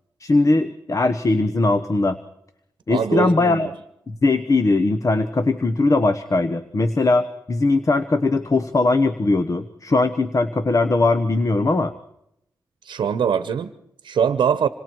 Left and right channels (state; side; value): normal; both; correlation 0.81